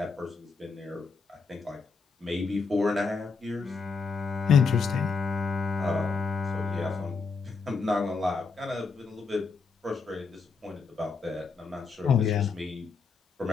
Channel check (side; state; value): right; quieter; 4.7 dB